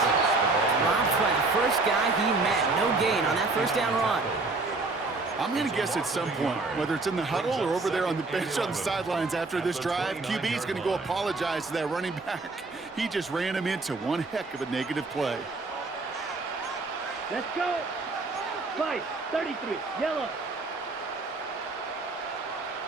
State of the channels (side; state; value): left; quieter; 3.5 dB